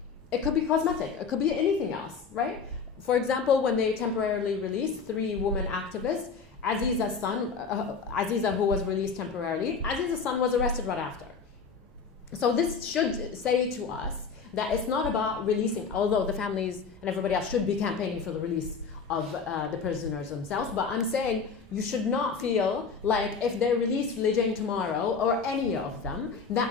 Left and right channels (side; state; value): right; quieter; 5.4 dB